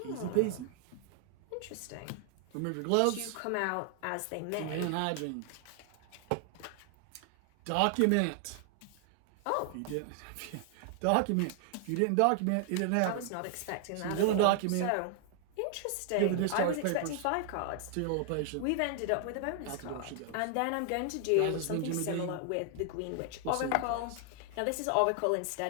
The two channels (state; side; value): different; both; correlation 0.00